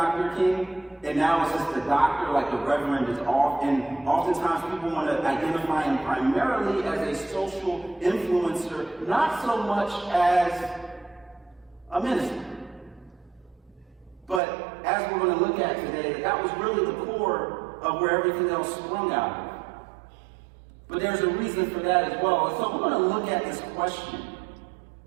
King, and now it's just the doctor, like the Reverend is off, and oftentimes people want to identify him primarily as a social influencer, not so much as a minister. But as we're going to look at today, that was really the core of where everything else sprung out of. But there's a reason for that as well. And so we're going to look at this question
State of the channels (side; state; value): left; drops out; at 14.4 s